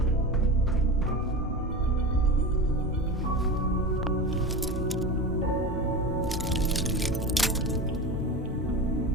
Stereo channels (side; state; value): both; normal; correlation 0.27